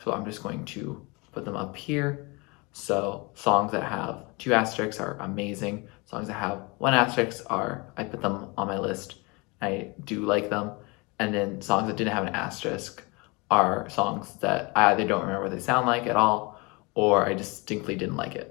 so I'm just going to put them up here. So songs that have 2 asterisks are amazing. Songs that have 1 asterisk I put them on my list. I do like them. And then songs that didn't have an asterisk are songs that I either don't remember what they sound like at all, or I distinctly didn't like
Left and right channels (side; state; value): right; quieter; 27.5 dB